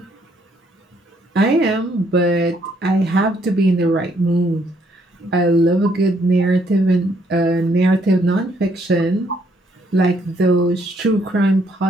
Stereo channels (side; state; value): both; normal; correlation 0.70